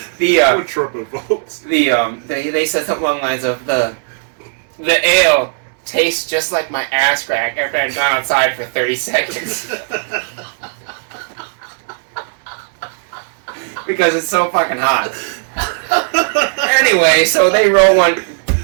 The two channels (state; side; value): silent; left; digital silence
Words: said something along the lines of the ale tastes just like my ass crack after I've gone outside for 30 seconds. Because it's so fucking hot. Anyway, so they roll one.